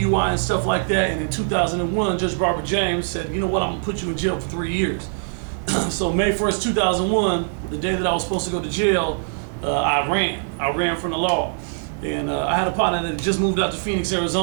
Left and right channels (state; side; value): silent; left; 57 dB below the other